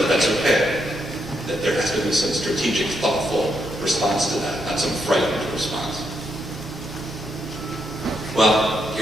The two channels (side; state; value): both; normal; correlation 0.79